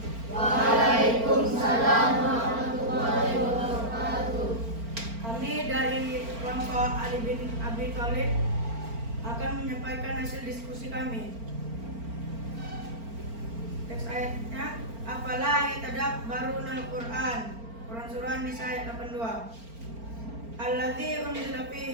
Waalaikumsalam warahmatullahi wabarakatuh. Kami dari kelompok Ali bin Abi Thalib akan menyampaikan hasil diskusi kami. Teks ayatnya, afala yatadabbarunal Qur'an. Quran surah Nisa ayat 82. Alladzi unzila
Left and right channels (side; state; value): left; late; 4.4 ms